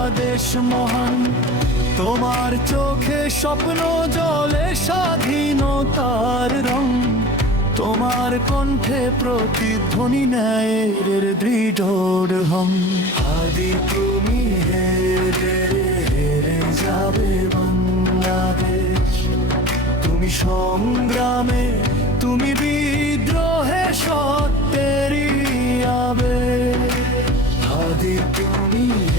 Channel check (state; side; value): normal; both; correlation 0.38